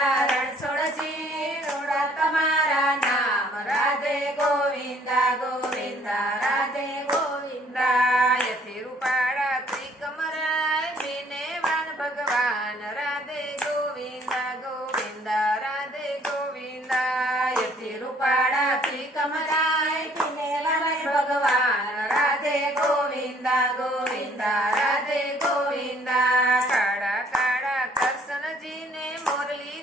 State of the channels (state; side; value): normal; both; correlation 0.60